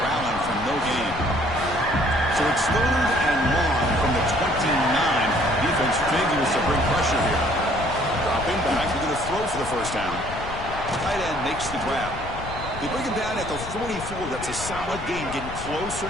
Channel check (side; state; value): left; noise; rumble, 10 dB below the sound